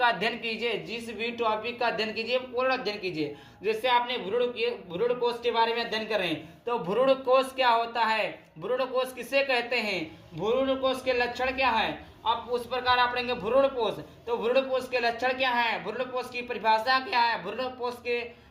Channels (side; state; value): both; identical; correlation 1.00